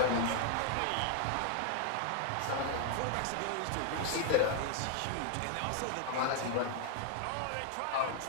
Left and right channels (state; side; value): different; both; correlation 0.00